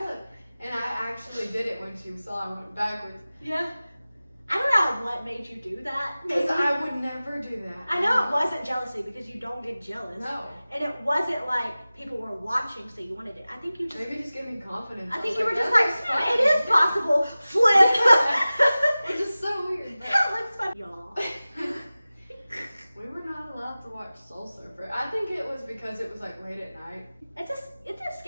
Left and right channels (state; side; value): inverted; both; correlation -0.97